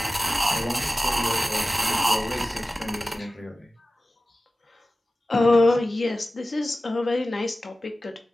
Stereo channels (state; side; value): normal; both; correlation 0.95